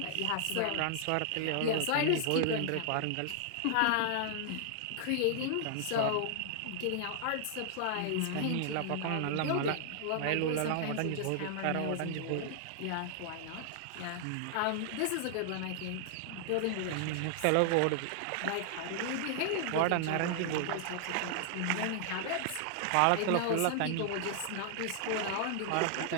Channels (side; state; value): both; different; correlation 0.00